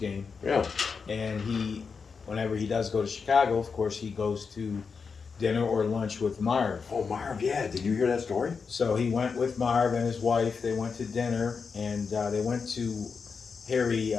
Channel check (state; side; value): quieter; right; 5.4 dB